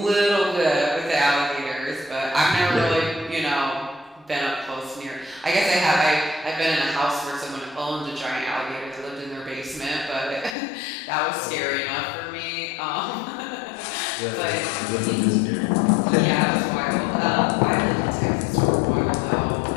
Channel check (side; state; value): right; drops out; at 10.6 s